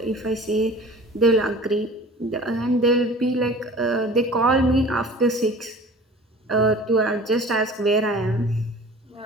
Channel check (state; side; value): normal; both; correlation 0.43